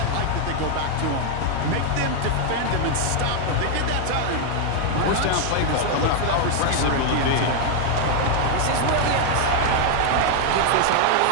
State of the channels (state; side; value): different; both; correlation 0.00